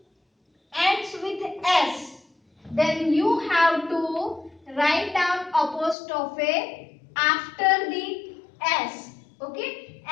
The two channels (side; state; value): right; drops out; at 6.0 s